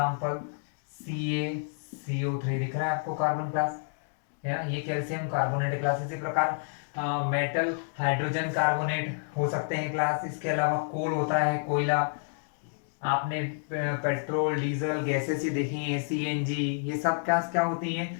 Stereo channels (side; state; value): right; silent; digital silence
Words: CaCO3 दिख रहा है आपको कार्बन क्लास, है ना? ये कैल्शियम कार्बोनेट क्लास। इसी प्रकार मेटल हाइड्रोजन कार्बोनेट हो सकते हैं क्लास। इसके अलावा कोल होता है, कोयला। आपने पेट्रोल डीजल गैसेस ही देखी हैं, CNG, ये सब क्या क्या होती